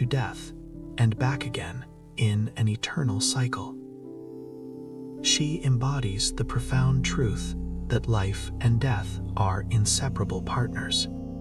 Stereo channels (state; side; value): identical; both; correlation 1.00